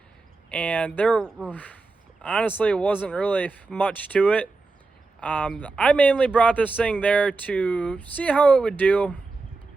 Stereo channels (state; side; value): quieter; left; 3.7 dB